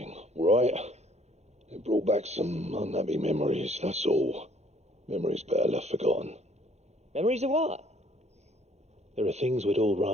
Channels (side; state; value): left; late; 0.32 ms